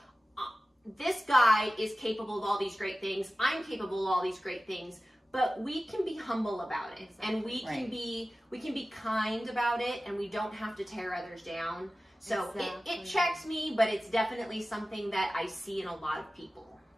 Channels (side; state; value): both; normal; correlation 0.95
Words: this guy is capable of all these great things. I'm capable of all these great things. But we can be humble about it, and we can be kind about it, and we don't have to tear others down. So it checks me, but it's definitely something that I see in a lot of people.